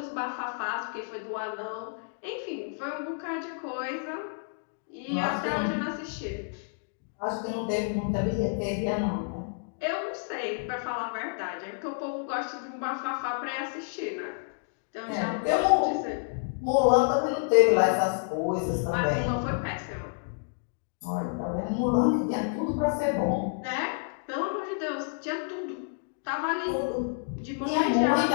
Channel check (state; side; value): silent; right; digital silence